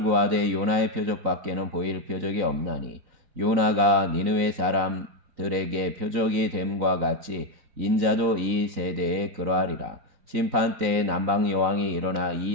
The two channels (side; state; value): left; late; 3.9 ms